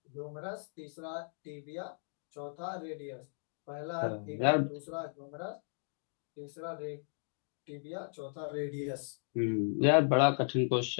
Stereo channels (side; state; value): right; silent; digital silence